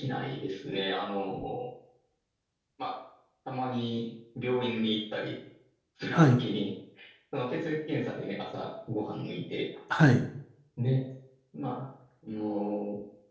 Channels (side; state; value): both; identical; correlation 1.00